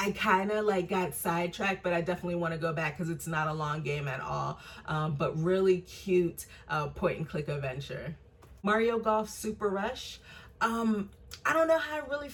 kind of like got sidetracked, but I definitely want to go back because it's not a long game at all. But really cute point and click adventure. Mario Golf Super Rush. I don't know how I really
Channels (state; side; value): identical; both; correlation 1.00